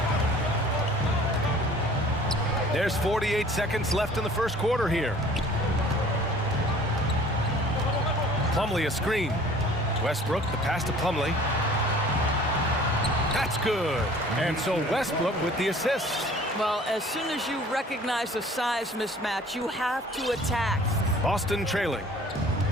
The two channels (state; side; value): normal; both; correlation 0.50